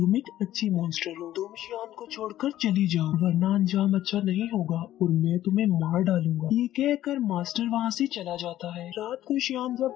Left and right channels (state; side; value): quieter; right; 13.3 dB